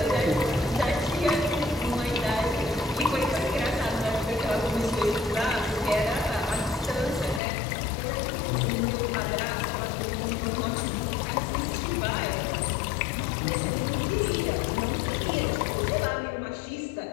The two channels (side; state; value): right; drops out; at 7.4 s